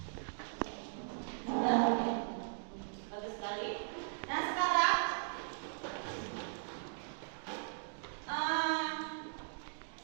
Bagus sekali. Nah sekarang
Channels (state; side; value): silent; left; digital silence